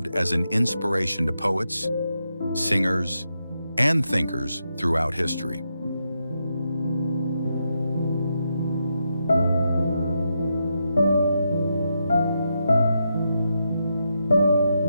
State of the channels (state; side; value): inverted; both; correlation -0.84